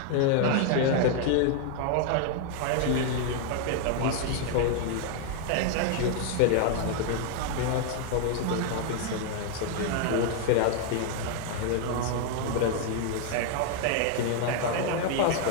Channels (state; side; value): different; both; correlation 0.00